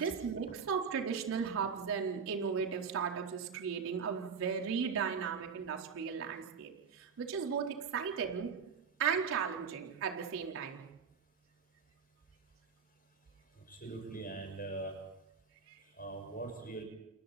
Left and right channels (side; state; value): left; quieter; 6.1 dB